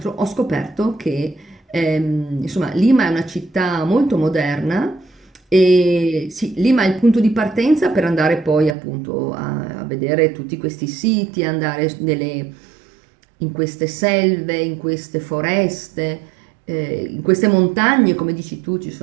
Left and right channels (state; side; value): drops out; left; at 8.8 s